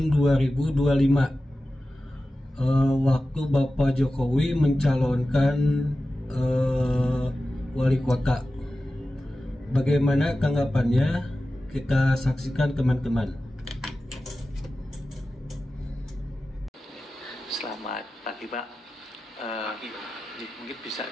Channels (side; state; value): both; normal; correlation 0.94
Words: 2025. Waktu Bapak Jokowi mencalonkan wali kota. Bagaimana tanggapannya? Kita saksikan teman-teman. Selamat pagi Pak. Mungkin bisa